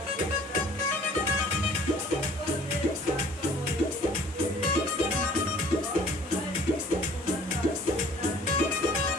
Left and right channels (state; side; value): normal; both; correlation 0.53